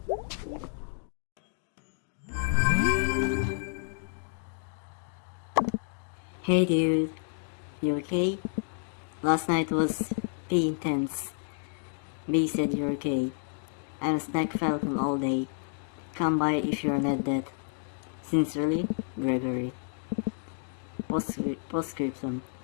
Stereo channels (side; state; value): right; silent; 58 dB below the other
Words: Hey dude, you okay? Last night was B intense. B said you're okay. I'm a snack falcon all day. Come by if you're not dead. Sincerely, Gregory. Postscriptum.